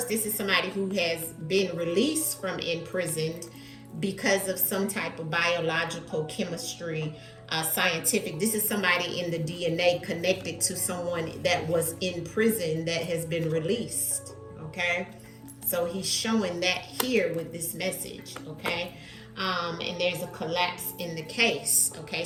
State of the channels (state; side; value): identical; both; correlation 1.00